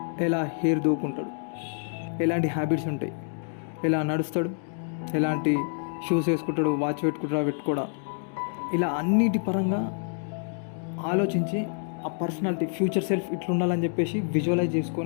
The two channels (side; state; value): right; silent; digital silence